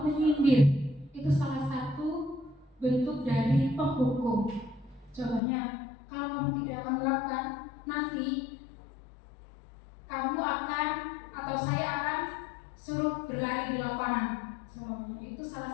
menyindir. Itu salah satu bentuk dari penghukum. Contohnya, kalau kamu tidak akan melakukan, nanti kamu akan atau saya akan suruh berlari di lapangan. Semuanya itu salah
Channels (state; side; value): drops out; right; at 5.4 s